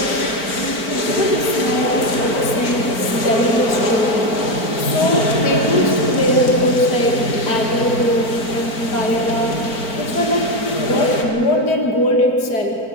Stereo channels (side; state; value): right; late; 4.4 ms